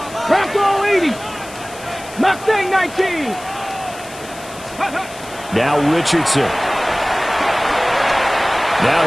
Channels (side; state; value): left; noise; hiss, 18 dB below the sound